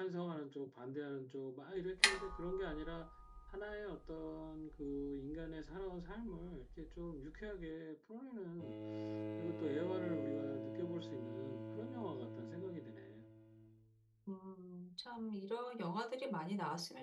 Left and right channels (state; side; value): identical; both; correlation 1.00